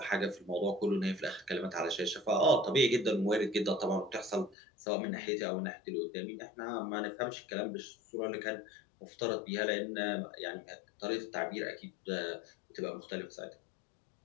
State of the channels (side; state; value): right; drops out; at 4.5 s